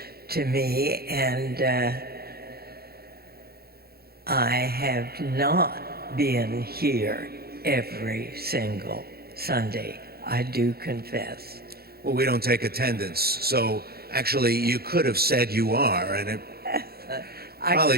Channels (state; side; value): late; left; 0.45 ms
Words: to me, and I have not been here every single Sunday, I do confess. Well, we don't take attendance, so actually you could have said you are, and it